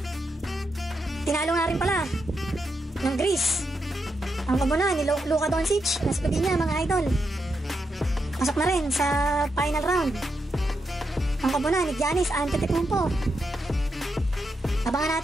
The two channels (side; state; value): both; normal; correlation 0.84